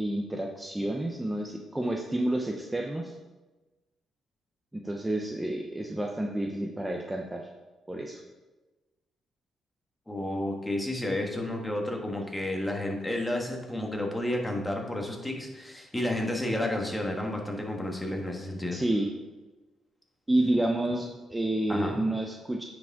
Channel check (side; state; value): both; normal; correlation 0.89